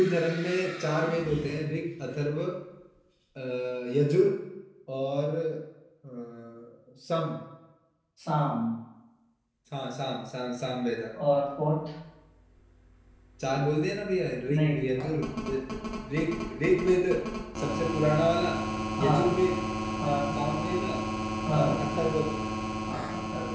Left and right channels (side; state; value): both; identical; correlation 1.00